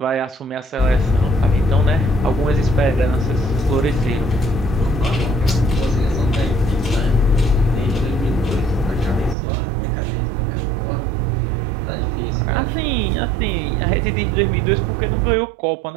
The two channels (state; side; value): drops out; left; at 9.3 s